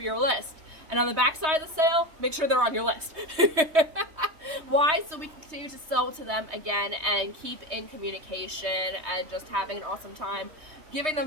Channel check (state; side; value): late; left; 3.2 ms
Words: list. And on the back side of the sale, make sure they're on your list. Why? So we can continue to sell to them again and keep in communication and just having an awesome time, giving